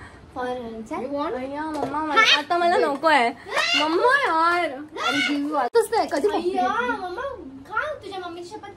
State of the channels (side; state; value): both; identical; correlation 1.00